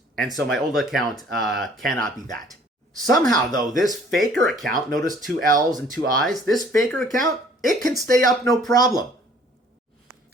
and so my old account cannot be that. Somehow, though, this faker account, notice 2 L's and 2 I's, this faker account, it can stay up no problem.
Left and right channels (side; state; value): both; normal; correlation 0.56